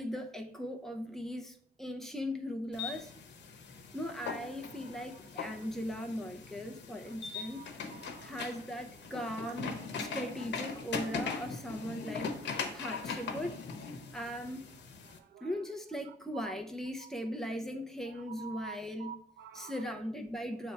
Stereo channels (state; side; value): normal; both; correlation 0.60